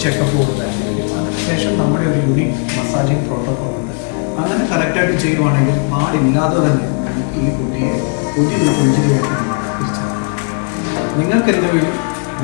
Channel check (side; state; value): right; quieter; 38.9 dB